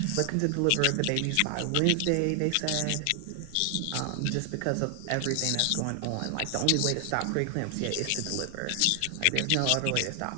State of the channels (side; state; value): both; different; correlation 0.00